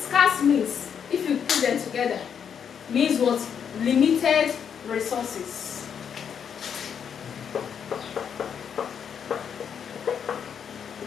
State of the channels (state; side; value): quieter; right; 7.7 dB